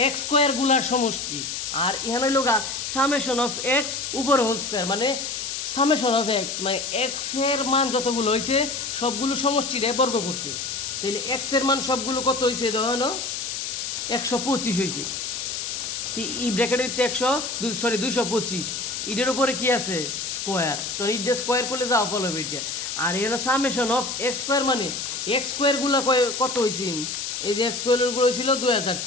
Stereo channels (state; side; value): noise; left; hiss, 4 dB below the sound